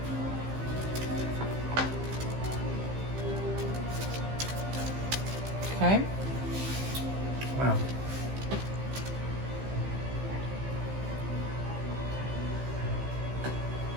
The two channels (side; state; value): left; late; 15 ms